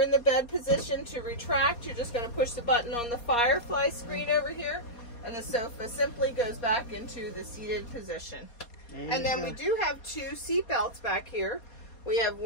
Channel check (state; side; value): late; right; 4.2 ms